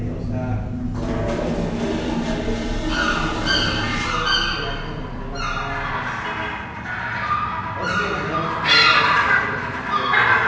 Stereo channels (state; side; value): identical; both; correlation 1.00